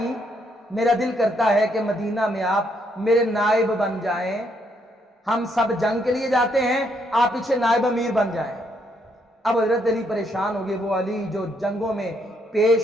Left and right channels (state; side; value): normal; both; correlation 0.73